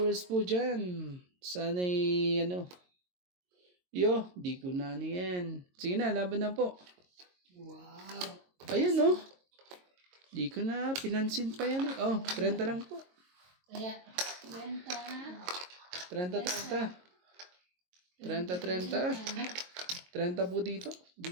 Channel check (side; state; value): left; late; 22 ms